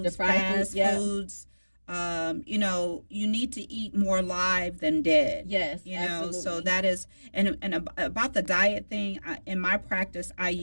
fast foods. You know, you need to eat more live than dead. Yes, you know, absolutely. so that is, and about the diet thing, in my practice, I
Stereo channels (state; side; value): inverted; both; correlation -1.00